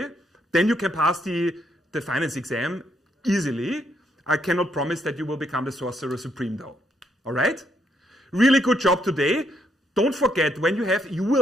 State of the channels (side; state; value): both; normal; correlation 0.74